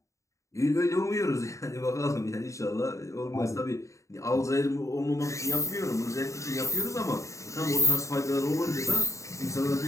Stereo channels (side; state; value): right; late; 0.15 ms